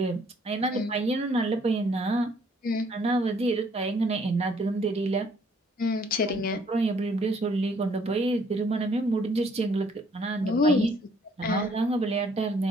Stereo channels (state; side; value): normal; both; correlation 0.63